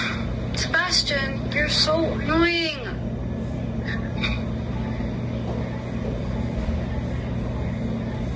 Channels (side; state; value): both; identical; correlation 1.00